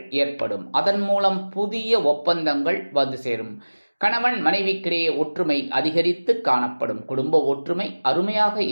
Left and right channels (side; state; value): both; inverted; correlation -1.00